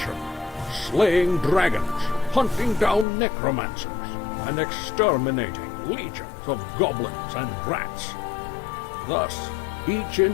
slaying dragons, hunting down necromancers, and exterminating legions of goblins and rats. Thus, each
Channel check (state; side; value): drops out; right; at 3.1 s